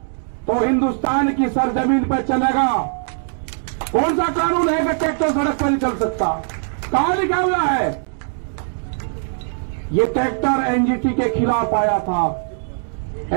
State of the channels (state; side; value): silent; left; 65 dB below the other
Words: तो हिंदुस्तान की सरजमीन पर चलेगा। कौन सा कानून है कि ट्रैक्टर सड़क पर नहीं चल सकता? कहां लिखा हुआ है? ये ट्रैक्टर एनजीटी के खिलाफ आया था,